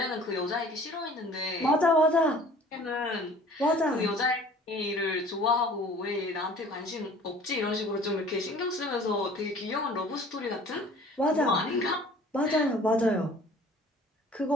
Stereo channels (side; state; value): both; normal; correlation 0.49